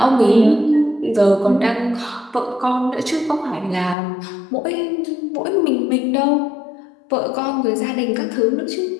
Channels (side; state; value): right; drops out; at 4.0 s